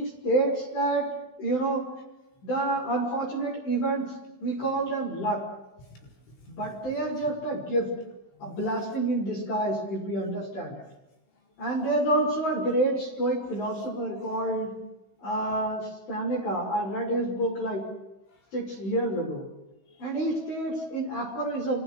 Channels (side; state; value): right; late; 16 ms